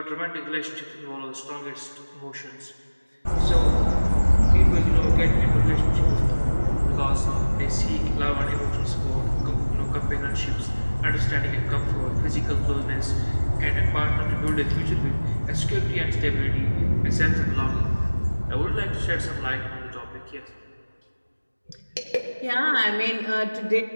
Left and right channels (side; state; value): both; inverted; correlation -1.00